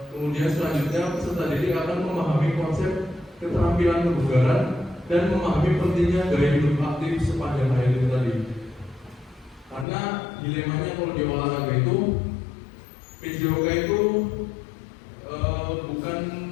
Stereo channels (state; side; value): drops out; right; at 9.9 s